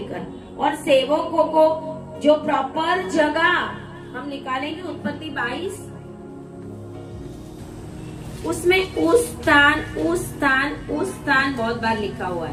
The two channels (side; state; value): both; identical; correlation 1.00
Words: और सेवकों को जो प्रॉपर जगह हम निकालेंगे उत्पत्ति 22, उसमें उस स्थान बहुत बार लिखा हुआ